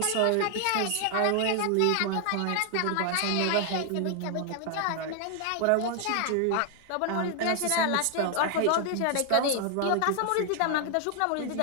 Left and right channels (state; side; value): different; both; correlation 0.00